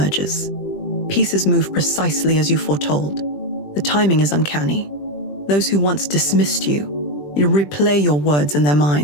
Pieces move precisely as you foretold. The timing is uncanny. Those who once dismissed you replay your words in their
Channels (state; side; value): late; right; 20 ms